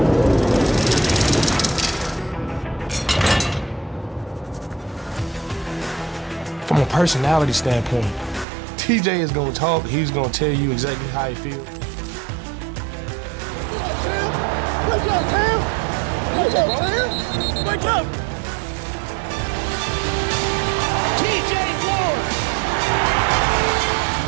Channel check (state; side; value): drops out; left; at 8.5 s